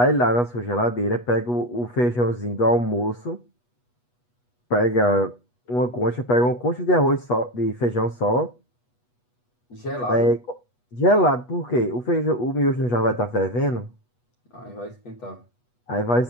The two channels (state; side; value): late; right; 8.2 ms